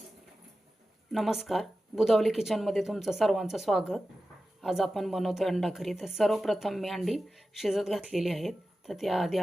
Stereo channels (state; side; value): normal; both; correlation 0.94